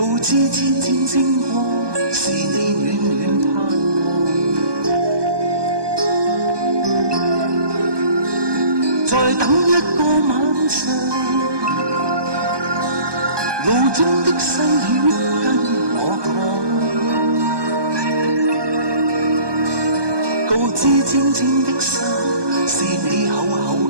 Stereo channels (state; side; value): late; left; 1.2 ms